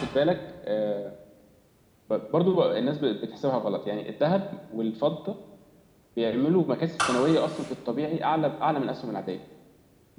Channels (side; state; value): both; identical; correlation 1.00